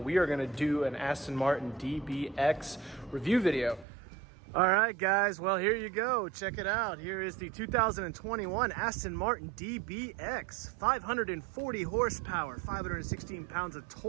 we are gonna do an Aston Martin DBX review video. All right guys, well here you go, check it out. Here is the 2021 Aston Martin DBX, 540 horsepower, 516 pounds of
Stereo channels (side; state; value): left; drops out; at 3.9 s